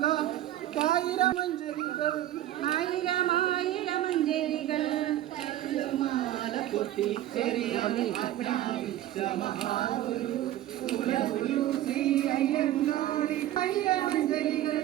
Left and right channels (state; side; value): quieter; left; 13.4 dB